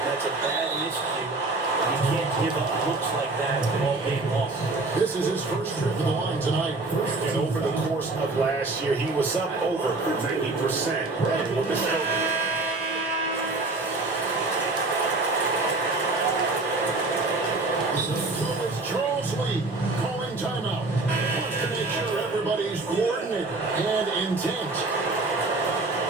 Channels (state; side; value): quieter; left; 3.3 dB